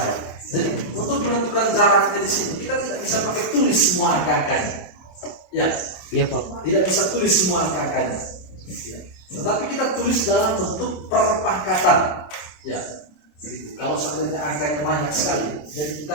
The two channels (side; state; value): right; late; 27 ms